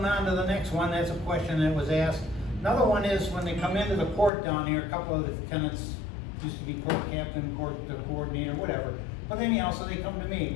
on to the next one, that's a question that was asked. Another one is when they come into the court down here, a couple of the tenants used to be court captain, court coordinator, whatever. But anyhow, so they come to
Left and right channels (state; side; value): drops out; right; at 4.3 s